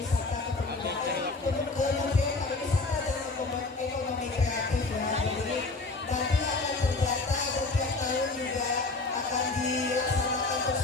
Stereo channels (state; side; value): quieter; right; 3.6 dB